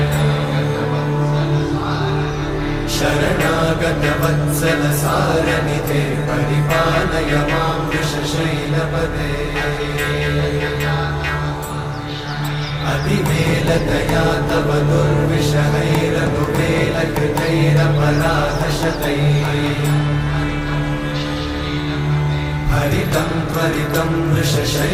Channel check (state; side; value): identical; both; correlation 1.00